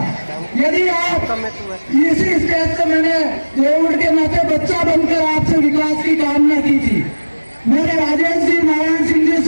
यदि आप इसी स्टेज से मैंने देवगढ़ के नाते बच्चा बनकर आपसे विकास की कामना की थी। मैंने राजेश जी, नारायण सिंह जी,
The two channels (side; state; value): both; inverted; correlation -1.00